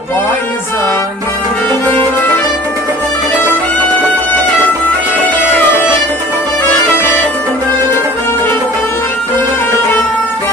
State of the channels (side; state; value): both; normal; correlation 0.46